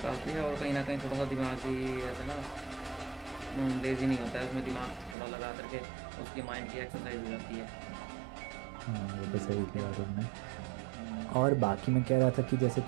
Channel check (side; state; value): left; drops out; at 5.2 s